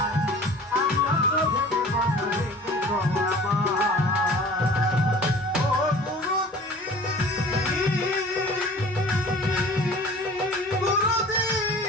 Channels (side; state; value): both; normal; correlation 0.45